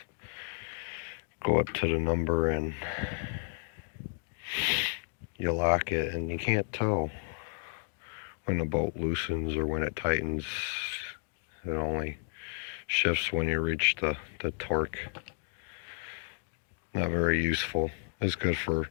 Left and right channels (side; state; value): right; silent; digital silence